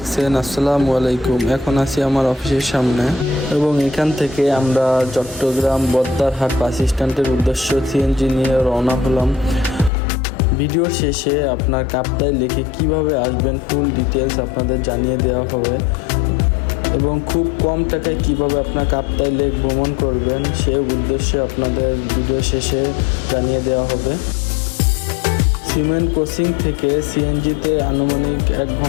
আসসালামু আলাইকুম। এখন আছি আমার অফিসের সামনে এবং এখান থেকে আমরা চট্টগ্রাম বদ্দারহাট বাস স্ট্যান্ডের উদ্দেশ্য সিএনজি নিয়ে রওনা হলাম। ভিডিওর শেষে আপনার কাপ্তাই লেকে কিভাবে আসবেন ফুল ডিটেলস আপনাদের জানিয়ে দেওয়া হবে এবং খুব কম টাকায় কিভাবে আপনার কাপ্তাই লেক ভ্রমণ করবেন সে উদ্দেশ্যে আপনাদের ভিডিও শেষে জানিয়ে দেওয়া হবে। সিমেন্ট ক্রসিং থেকে সিএনজিতে আনুমানিক 1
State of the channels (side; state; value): right; drops out; at 9.9 s